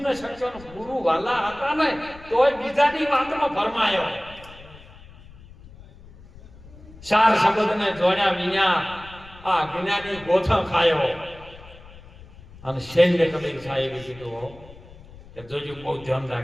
ન શક્યો. ગુરુ વાલા હતા ને તોય બીજાની વાતમાં ભરમાયો. 4 શબ્દને જોડ્યા વિના આ જ્ઞાની ગોથણ ખાયો. અને શૈલ્ય કબીર સાહેબે કીધું કે જોજો બહુ ધ્યાન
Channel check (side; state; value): left; noise; rumble, 20 dB below the sound